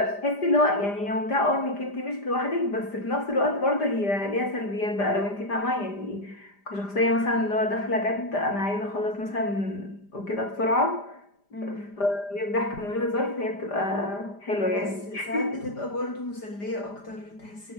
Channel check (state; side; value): late; right; 5.0 ms